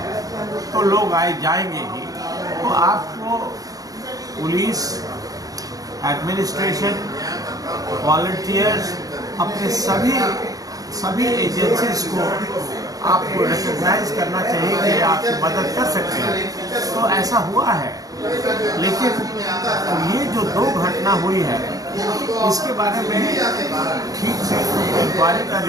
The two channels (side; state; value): left; late; 0.17 ms